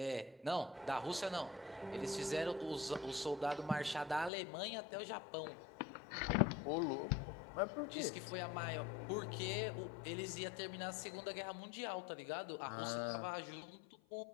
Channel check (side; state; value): right; drops out; at 4.3 s